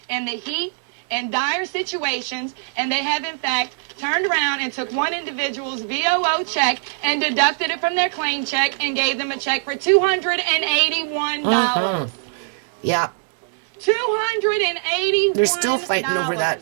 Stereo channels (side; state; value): left; silent; digital silence